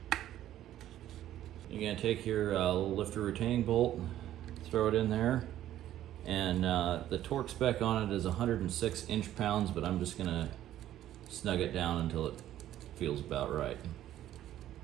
you're going to take your little lifter retaining bolt, throw it in there, and the torque spec on it is 106 inch-pounds, but I'm just going to snug it down until it feels about right.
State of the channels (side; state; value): left; quieter; 12.6 dB